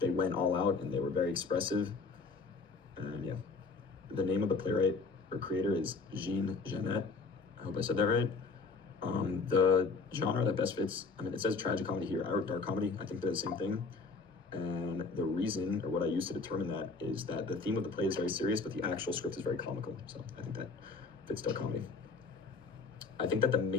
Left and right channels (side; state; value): right; quieter; 4.3 dB